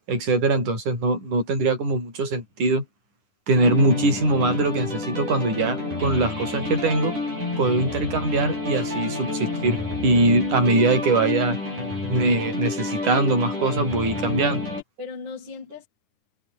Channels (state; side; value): late; left; 9.7 ms